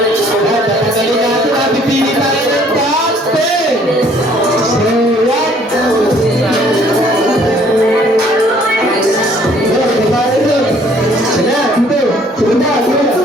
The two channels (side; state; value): both; normal; correlation 0.59